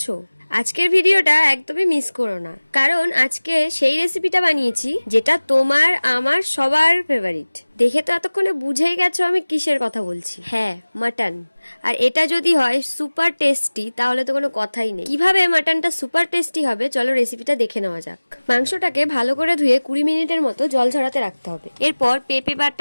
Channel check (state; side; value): inverted; both; correlation -1.00